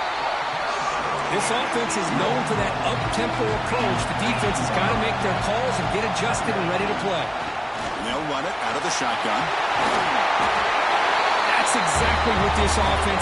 This offense is known for that up-tempo approach. The defense has got to make their calls and get adjusted and ready to play. And they'll run it out of the shotgun. That's exactly what this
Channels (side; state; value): both; identical; correlation 1.00